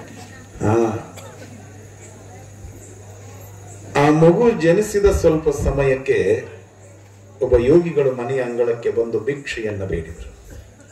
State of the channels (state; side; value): identical; both; correlation 1.00